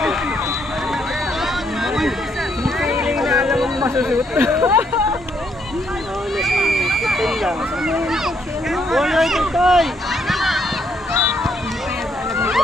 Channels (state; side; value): normal; both; correlation 0.72